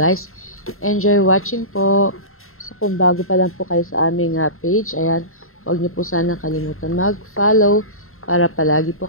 enjoy watching po. So kung bago pa lang po kayo sa aming page, ayan, huwag niyo po sana kalimutan mag-follow para palagi po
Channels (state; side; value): late; right; 0.62 ms